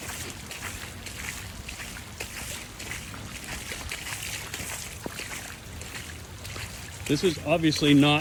This is obviously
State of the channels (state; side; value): identical; both; correlation 1.00